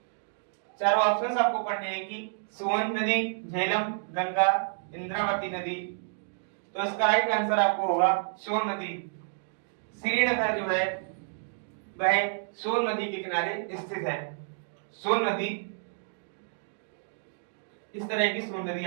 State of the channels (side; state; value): left; silent; digital silence